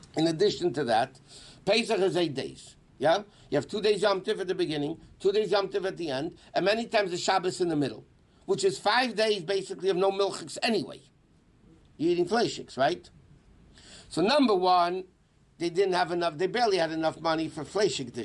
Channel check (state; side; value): identical; both; correlation 1.00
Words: in addition to that, Pesach is 8 days. Yeah? You have 2 days Yom Tov at the beginning, 2 days Yom Tov at the end, and many times the Shabbos in the middle, which is 5 days basically of no milchiks anyway. You're eating fleishiks, right? So number one, they barely had enough money for fleishik